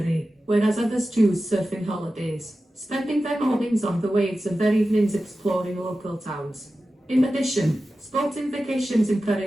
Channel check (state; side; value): normal; both; correlation 0.94